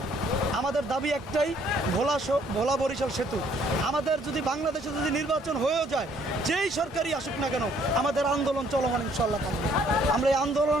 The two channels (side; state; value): both; normal; correlation 0.64